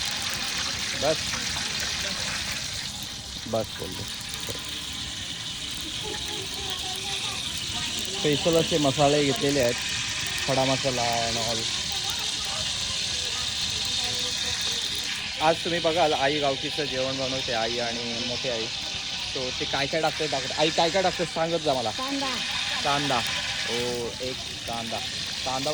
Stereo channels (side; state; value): right; noise; rumble, 26 dB below the sound